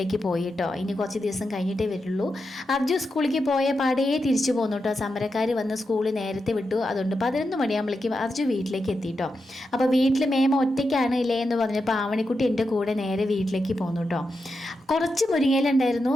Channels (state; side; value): normal; both; correlation 0.87